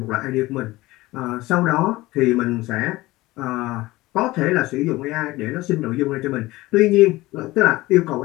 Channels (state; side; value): quieter; right; 19.1 dB